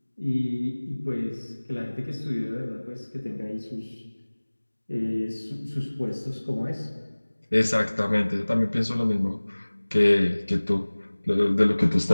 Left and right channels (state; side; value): inverted; both; correlation -1.00